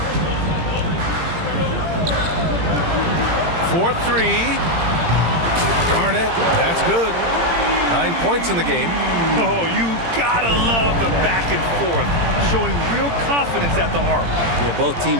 For 3. Garnett, that's good. 9 points in the game. Oh, you gotta love the back and forth, showing real confidence at the arc. Yeah, both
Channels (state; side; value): late; left; 17 ms